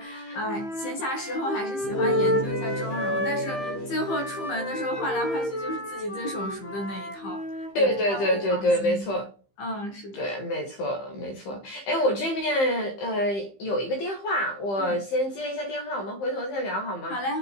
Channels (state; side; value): late; right; 15 ms